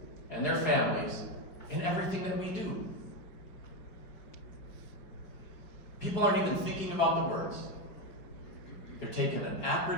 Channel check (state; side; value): late; right; 5.2 ms